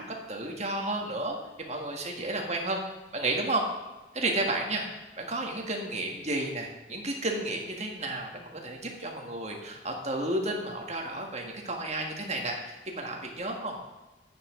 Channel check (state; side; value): normal; both; correlation 0.08